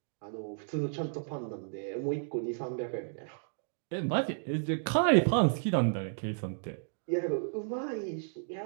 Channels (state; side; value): silent; left; digital silence